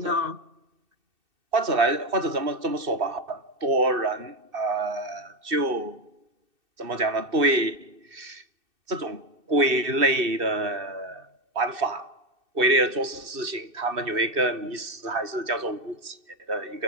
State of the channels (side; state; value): left; late; 2.6 ms